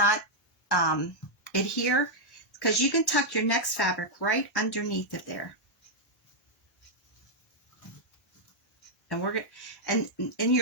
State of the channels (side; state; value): both; normal; correlation -0.03